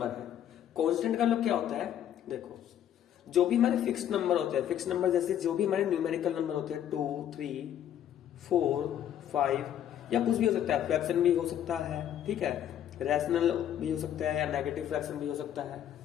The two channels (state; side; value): quieter; right; 10.5 dB